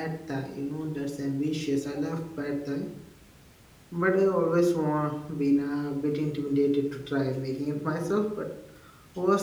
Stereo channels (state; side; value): identical; both; correlation 1.00